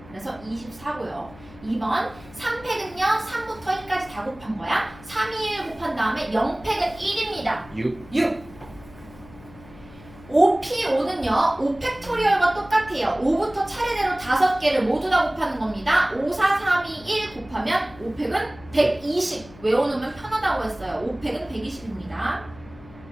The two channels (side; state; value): left; noise; hum, 20 dB below the sound